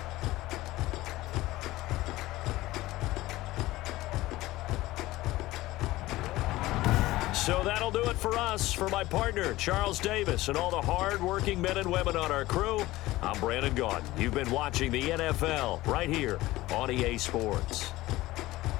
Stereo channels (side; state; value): right; quieter; 17.7 dB